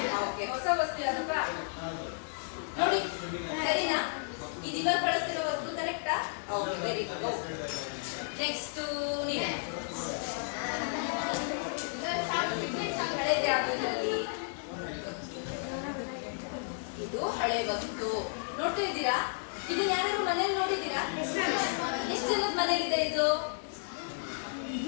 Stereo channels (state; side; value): silent; right; 56 dB below the other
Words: ಓಕೆ. ಹೊಸ ವಸ್ತು ಯಾವ್ದಪ್ಪ? ನೋಡಿ, ಸರಿನಾ? ಇದು ಇವಾಗ ಬಳಸ್ತಿರೋ ವಸ್ತು ಕರೆಕ್ಟಾ? Okay, very good. ನೆಕ್ಸ್ಟ್ ನೀನೆ. ಹಳೆದು ಯಾವ್ದ್ರಲ್ಲಿ? ಇದು ಹಳೆ ವಸ್ತು. ನೋಡ್ತಾ ಇದ್ದೀರಾ? ಇದನ್ನ ಯಾರಾದ್ರೂ ಮನೇಲಿ ನೋಡಿದ್ದೀರಾ? ಎಷ್ಟು ಜನದ ಮನೇಲಿದೆ ಇದು?